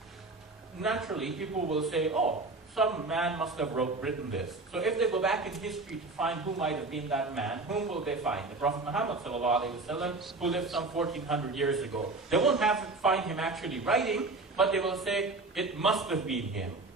naturally people will say, oh, some man must have written this. So if they go back in history to find who might have been that man, whom will they find? The Prophet Muhammad ﷺ, who lived some 1400 years ago. They won't have to find him actually writing, but they will say, it must have been him.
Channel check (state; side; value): quieter; left; 3.4 dB